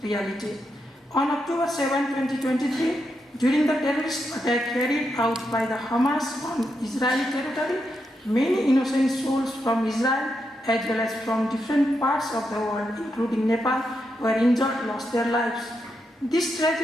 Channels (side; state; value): both; normal; correlation 0.84